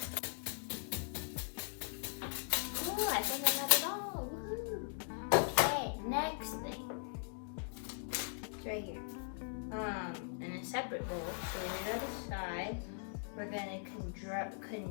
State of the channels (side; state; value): right; silent; digital silence